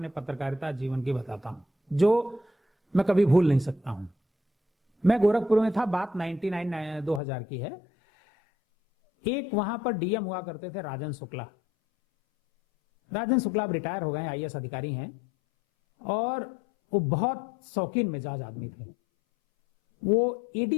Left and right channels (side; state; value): right; drops out; at 7.2 s